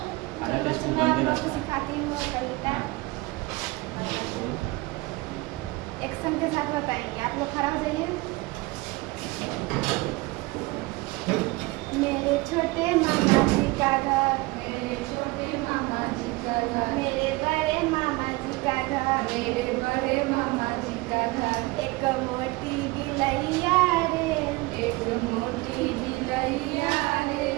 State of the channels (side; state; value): left; quieter; 22.5 dB